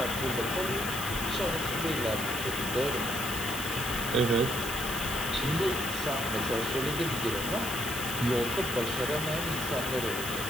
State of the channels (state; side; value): noise; right; hiss, 6 dB below the sound